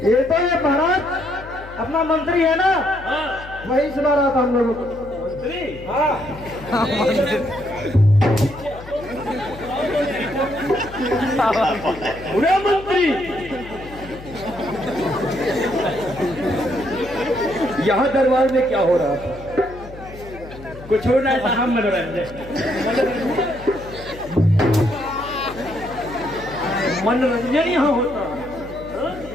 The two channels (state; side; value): noise; left; hum, 16 dB below the sound